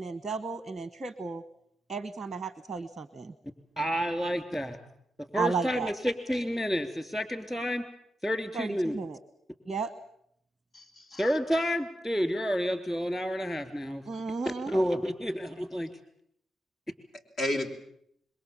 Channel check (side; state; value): both; normal; correlation 0.89